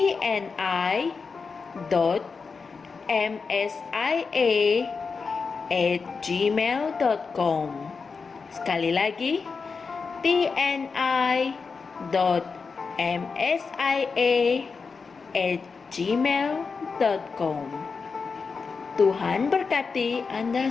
Sekali lagi, tni.msia@gmail.com. Tuhan berkati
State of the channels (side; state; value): right; quieter; 5.0 dB